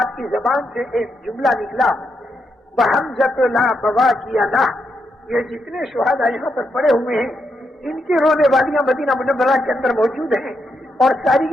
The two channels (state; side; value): normal; both; correlation 0.82